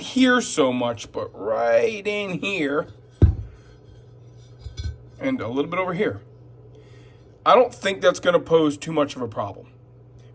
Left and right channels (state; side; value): identical; both; correlation 1.00